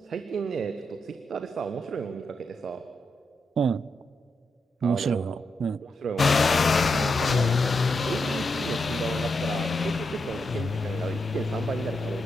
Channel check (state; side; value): normal; both; correlation 0.84